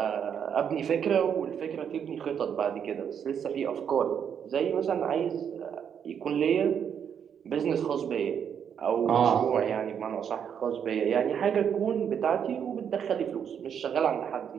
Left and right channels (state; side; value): quieter; left; 8.0 dB